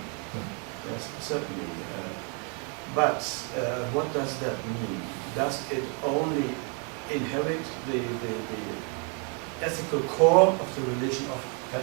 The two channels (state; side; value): quieter; left; 34.6 dB